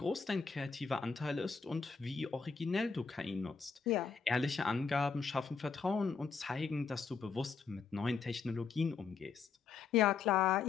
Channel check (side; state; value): right; quieter; 5.4 dB